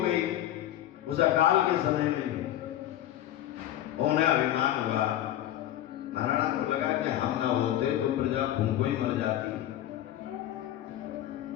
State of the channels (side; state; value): right; quieter; 12.8 dB